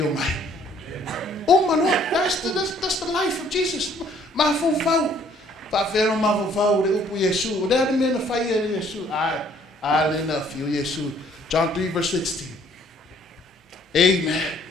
mai. Oh my Lord, that's the life of Jesus. Mafaufau. Faafero mafaufau le upu Iesu. O le mena fai e Iesu. Le na fio Iesu. John 3 verse 16. Amen.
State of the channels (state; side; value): normal; both; correlation 0.61